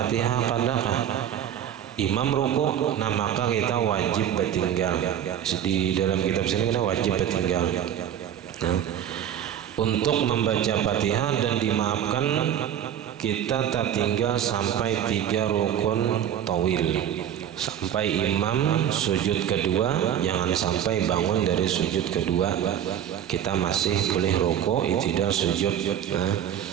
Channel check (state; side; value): quieter; left; 10.0 dB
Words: kadakah imam ruku, nah maka kita wajib bertinggal. Di dalam kitab sini kita wajib bertinggal. Nah, untuk membaca Fatihah dan dimaafkan kita tertinggal sampai 3 rukun tawil, sampai imam sujud kedua, jangan sampai bangun dari sujud kedua kita masih boleh ruku, i'tidal, sujud.